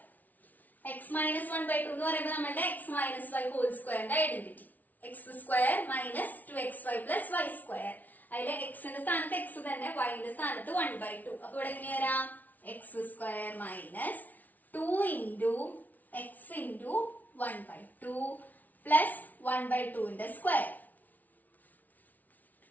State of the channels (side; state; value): right; late; 0.078 ms